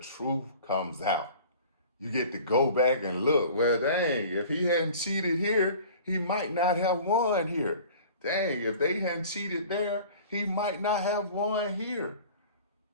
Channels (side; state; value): both; inverted; correlation -0.44